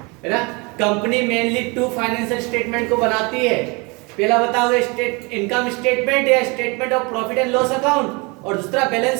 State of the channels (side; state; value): left; quieter; 28.4 dB